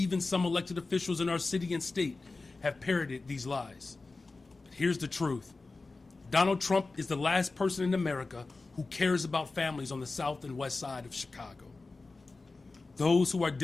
some elected officials in our city and state have parroted these lies. But here's the truth. Donald Trump is the last person in America who cares about families on the south and west side of Chicago, those who are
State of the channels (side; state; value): right; quieter; 3.6 dB